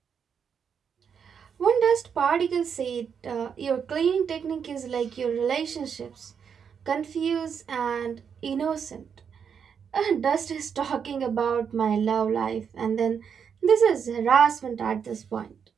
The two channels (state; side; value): quieter; left; 7.1 dB